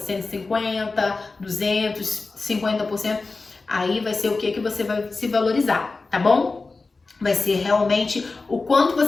200, 50%. Aí vai ser o que você vai se valorizar, tá bom? Vai ser realmente o quanto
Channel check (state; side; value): quieter; right; 3.8 dB